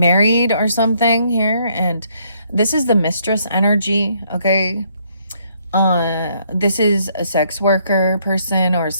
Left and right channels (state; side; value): inverted; both; correlation -0.69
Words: or something here, and This is the mistress energy, okay? This is a sex worker person or